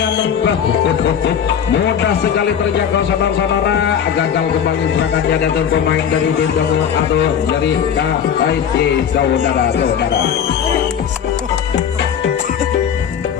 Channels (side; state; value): right; quieter; 8.3 dB